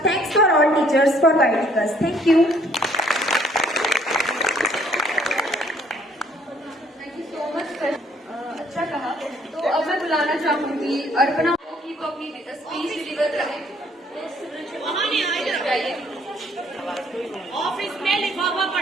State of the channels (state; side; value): normal; both; correlation 0.63